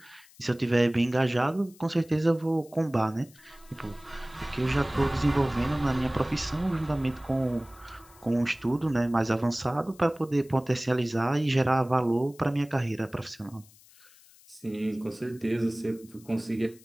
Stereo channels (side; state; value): left; noise; hiss, 26 dB below the sound